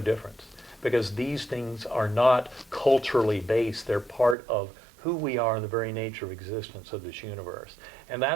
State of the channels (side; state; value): left; drops out; at 4.4 s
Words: difference, because these things are not culturally based. They're part of who we are and the very nature of existence of this universe. And